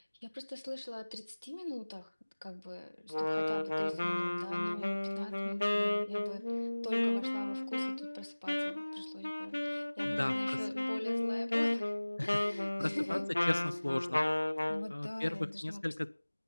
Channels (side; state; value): both; inverted; correlation -1.00